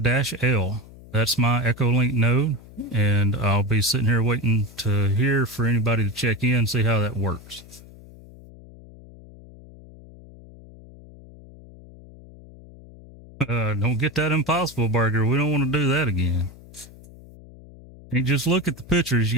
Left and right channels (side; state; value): left; noise; hum, 20 dB below the sound